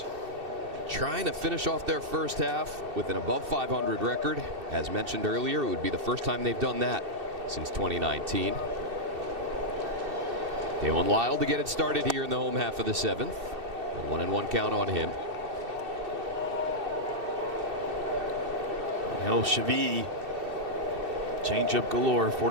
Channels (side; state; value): left; late; 2.7 ms